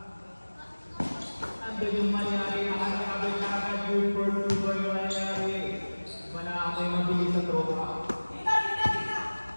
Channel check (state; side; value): inverted; both; correlation -1.00